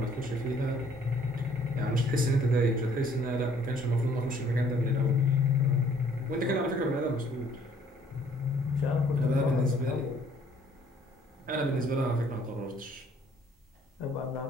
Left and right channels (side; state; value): both; normal; correlation 0.61